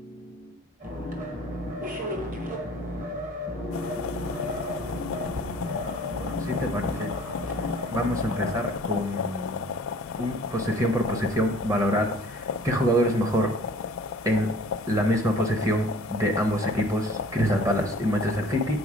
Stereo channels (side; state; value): both; normal; correlation 0.50